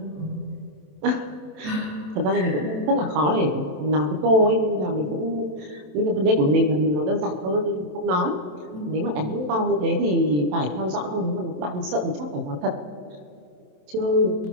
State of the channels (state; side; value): late; left; 27 ms